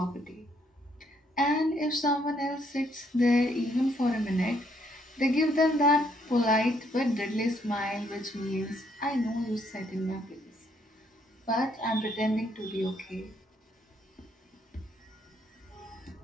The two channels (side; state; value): both; normal; correlation 0.70